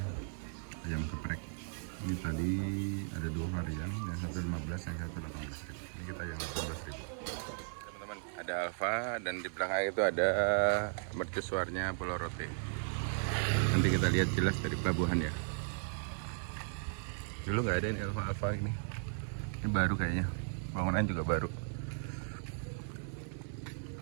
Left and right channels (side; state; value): left; silent; 54 dB below the other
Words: ayam geprek. Ini tadi ada 2 varian, yang satu 15, yang satu 18.000. Ini kita yang 18.000. Teman-teman, ada Alfa dan di belakang itu ada mercusuarnya Pulau Rote. Nanti kita lihat jelas dari pelabuhan ya. Dulu nggak ada ini Alfa ini. Ini baru kayaknya. Bangunan juga baru.